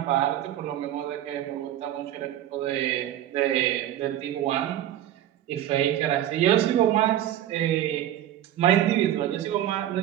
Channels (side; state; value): left; quieter; 12.1 dB